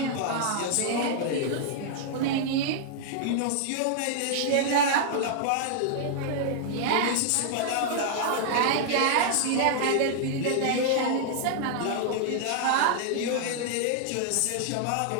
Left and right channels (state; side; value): different; both; correlation -0.01